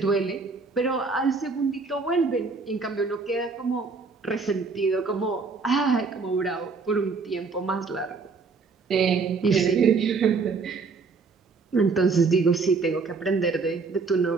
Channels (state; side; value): quieter; left; 4.5 dB